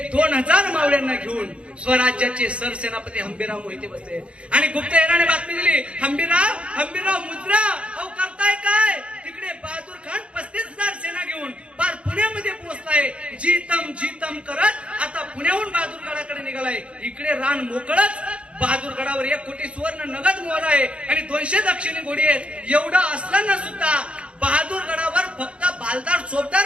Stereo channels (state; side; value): late; left; 0.059 ms